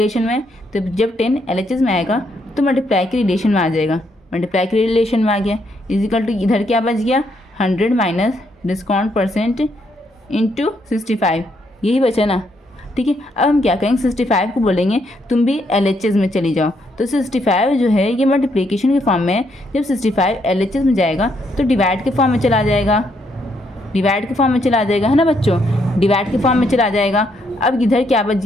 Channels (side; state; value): both; normal; correlation 0.74